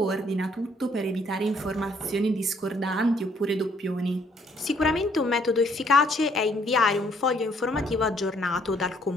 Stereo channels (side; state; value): both; normal; correlation 0.66